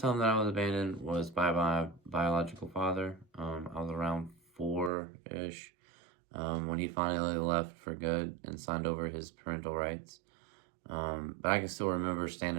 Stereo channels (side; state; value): left; drops out; at 4.9 s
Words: that I was abandoned was by my biological father. I was around four-ish when he finally left for good and signed over his parental rights. But I can still remember